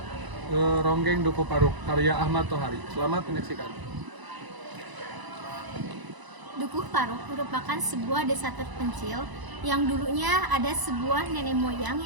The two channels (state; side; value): late; left; 1.0 ms